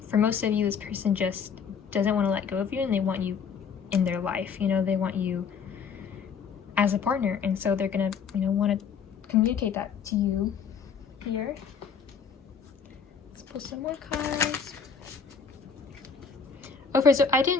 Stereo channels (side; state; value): right; quieter; 6.3 dB